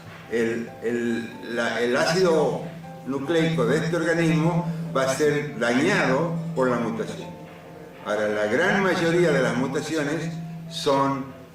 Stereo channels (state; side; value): identical; both; correlation 1.00